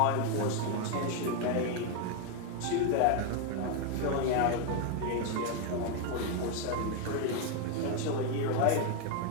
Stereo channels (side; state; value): both; different; correlation 0.01